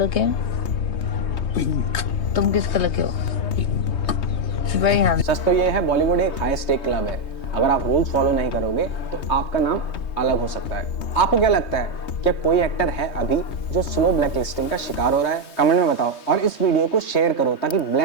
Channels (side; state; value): right; late; 3.2 ms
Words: के हैं? पिंक। तुम किस कलर के हो? Very handsome. सच तो ये है, बॉलीवुड एक हाई स्टेक क्लब है। अगर आप रूल्स फॉलो नहीं करोगे तो आपका नाम अलग हो सकता है। आपको क्या लगता है, क्या कोई एक्टर है अभी जो स्लो ब्लैकलिस्टिंग का शिकार हो रहा है? कमेंट में बताओ और इस वीडियो को शेयर करो ताकि